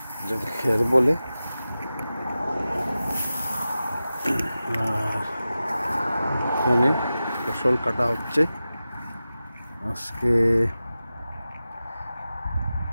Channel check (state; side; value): inverted; both; correlation -0.94